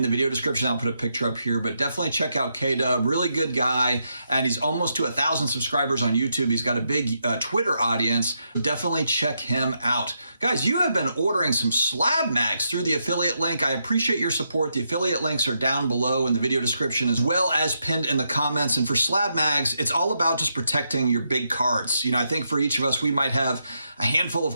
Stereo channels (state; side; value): inverted; both; correlation -0.81